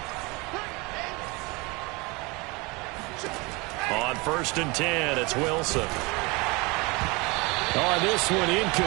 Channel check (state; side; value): quieter; left; 26.1 dB